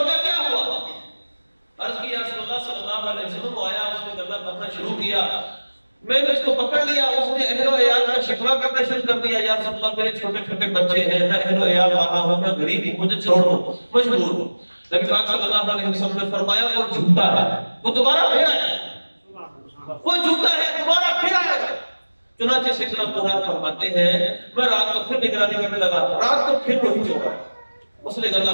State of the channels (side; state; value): both; inverted; correlation -1.00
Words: کا کیا ہوا؟ عرض کی یا رسول اللہ صلی اللہ علیہ وسلم آیا، اس نے گلہ بھرنا شروع کیا، میں نے اس کو پکڑ لیا، اس نے اہل و عیال کا شکوہ کرنا شروع کر دیا، یا رسول اللہ میرے چھوٹے چھوٹے بچے ہیں، میں اہل و عیال رہا ہوں، میں غریب ہوں، مجھے چھوڑ دو، مجبور ہوں۔ نبی پاک صلی اللہ علیہ وسلم نے فرمایا وہ جھوٹا ہے، وہ دوبارہ پھر آئے گا، وہ جھوٹا ہے دوبارہ پھر آئے گا۔ چنانچہ سیدنا ابو ہریرہ فرماتے ہیں میں رات کو پھر نگرانی کرنے لگا، رات کو پھر وہی چور ہے، اس نے گلہ